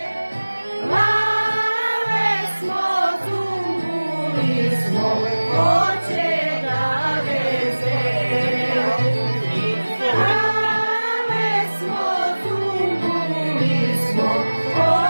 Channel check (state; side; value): inverted; both; correlation -1.00